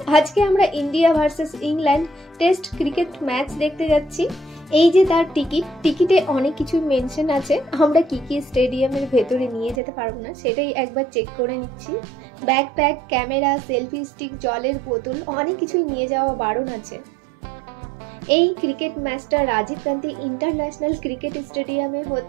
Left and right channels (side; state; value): left; drops out; at 9.8 s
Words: আজকে আমরা India versus England test cricket match দেখতে যাচ্ছি। এই যে তার টিকিটে অনেক কিছু মেনশন আছে, আমরা কি কি স্টেডিয়ামের ভেতরে নিয়ে যেতে পারবো না সেটাই একবার চেক করে নিচ্ছি। ব্যাকপ্যাক, ক্যামেরা, সেলফি স্টিক, জলের বোতল অনেক কিছুই নিয়ে যাওয়া বারণ আছে। এই ক্রিকেট ম্যাচটা রাজীব গান্ধী ইন্টারন্যাশনাল ক্রিকেট স্টেডিয়ামে